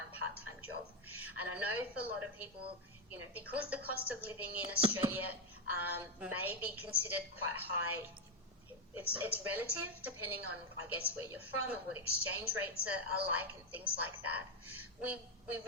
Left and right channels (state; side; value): normal; both; correlation 0.05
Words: part-time job. And I know for a lot of people, because the cost of living in Australia may be considered quite high, it's relative depending on, I guess, where you're from and what exchange rates are like and things like that. We